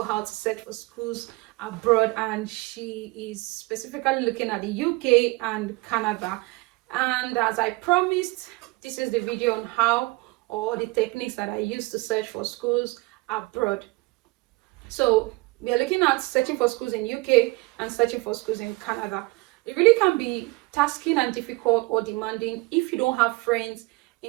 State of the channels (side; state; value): left; quieter; 24.4 dB